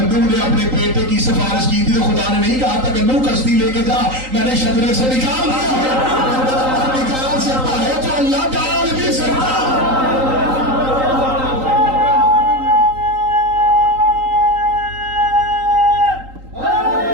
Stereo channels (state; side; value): late; left; 3.8 ms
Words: نوح نے اپنے بیٹے کی سفارش کی تھی تو خدا نے نہیں کہا تھا کہ نوح کشتی لے کے جا، میں نے شجرے سے نکال دیا ہے۔ نکال سکتا ہے تو اللہ ڈال بھی سکتا۔